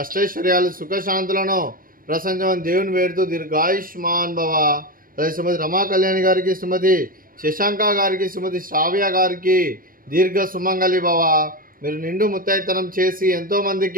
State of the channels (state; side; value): late; left; 0.41 ms